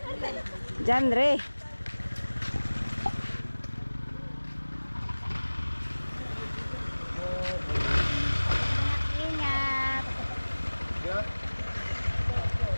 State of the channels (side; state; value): both; inverted; correlation -1.00